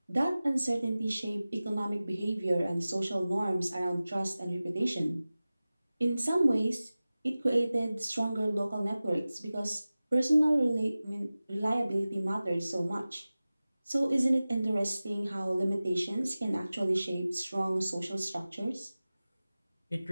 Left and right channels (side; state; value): both; inverted; correlation -0.97